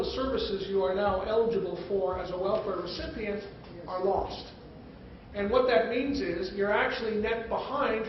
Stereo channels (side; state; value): both; identical; correlation 1.00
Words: the services you are now eligible for as a welfare recipient are lost. And what that means is you're actually net behind